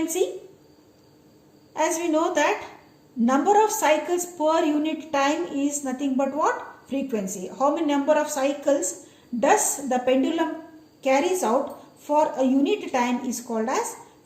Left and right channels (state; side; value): identical; both; correlation 1.00